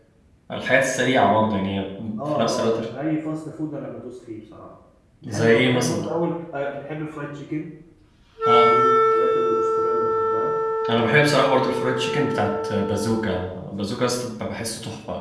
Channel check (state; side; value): identical; both; correlation 1.00